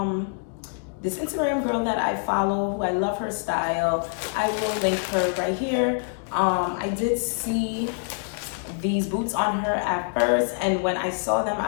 girl that I follow, who I love her style. I will link her right here. I did see these boots on her at first, and when I saw them,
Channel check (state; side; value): silent; right; 61 dB below the other